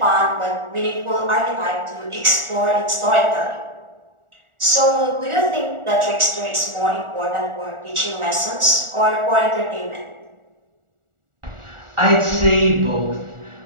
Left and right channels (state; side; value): late; left; 1.4 ms